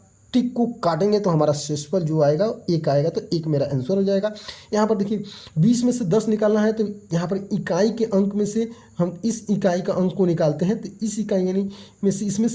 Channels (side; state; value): both; identical; correlation 1.00